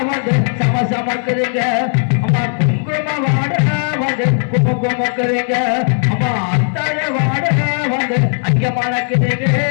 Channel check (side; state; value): right; silent; 69 dB below the other